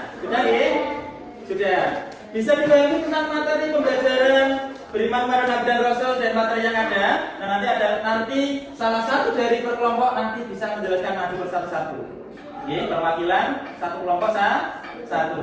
Sudah ya? Sudah. Bisa dipahami tentang materi pembelajaran beriman kepada Nabi dan Rasul dan materi yang ada. Nah, nanti salah satu dari perkelompok nanti bisa menjelaskan maju bersatu-satu. Oke, perwakilan satu kelompok satu.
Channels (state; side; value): identical; both; correlation 1.00